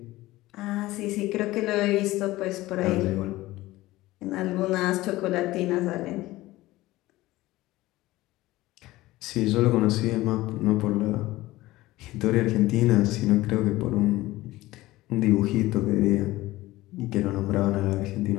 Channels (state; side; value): quieter; right; 17.9 dB